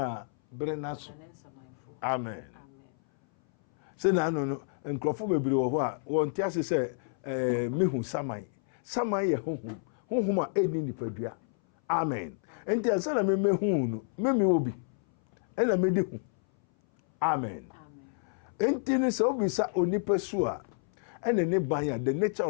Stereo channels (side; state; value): right; silent; 58 dB below the other